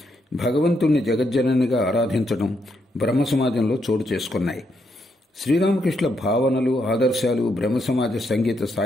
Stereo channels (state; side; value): normal; both; correlation 0.78